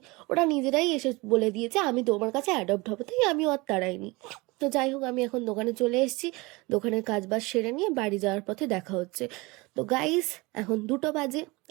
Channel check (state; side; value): quieter; left; 24.2 dB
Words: ওরা নিজেরাই এসে বলে দিয়েছে আমি তোমার কাছে অ্যাডপ্ট হবো, তাই আমিও আর তাড়াইনি। তো যাই হোক, আমি এখন দোকানে চলে এসেছি। দোকানের কাজ বাজ সেরে নিয়ে বাড়ি যাওয়ার পথে দেখা হচ্ছে। তো গাইস, এখন 2টো বাজে।